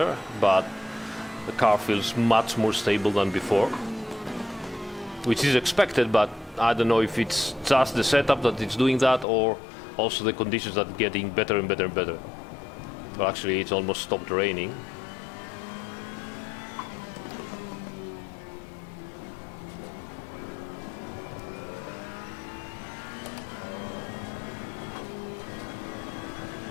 but the car feels much more stable than before, which is expected, but I don't know if it's just the setup that it's doing that or also the conditions that are getting better and better and better. Well, actually, it's almost stopped raining.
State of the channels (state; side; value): drops out; right; at 9.2 s